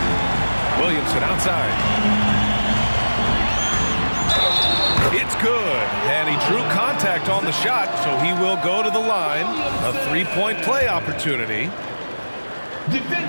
Williamson outside. It's good. And he drew contact on the shot, so he will go to the line. A 3-point play opportunity.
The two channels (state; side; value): inverted; both; correlation -1.00